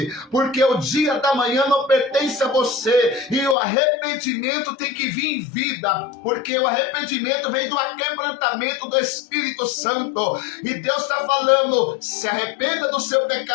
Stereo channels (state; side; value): drops out; right; at 3.6 s